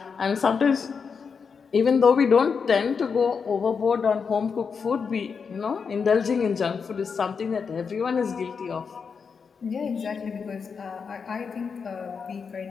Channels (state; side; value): quieter; right; 5.8 dB